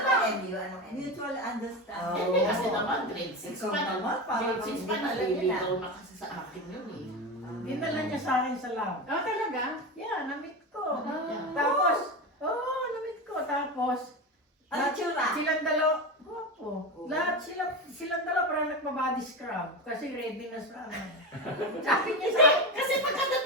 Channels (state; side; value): normal; both; correlation 0.20